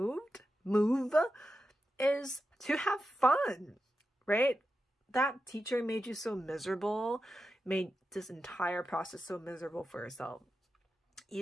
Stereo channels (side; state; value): both; normal; correlation 0.90